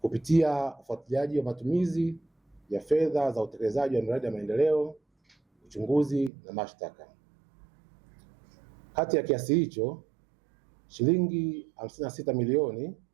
ufuatiliaji wa matumizi ya fedha za utekelezaji wa miradi ya maendeleo, uchunguzi na mashtaka. Kati ya kiasi hicho, shilingi 56 milioni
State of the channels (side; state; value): left; drops out; at 6.3 s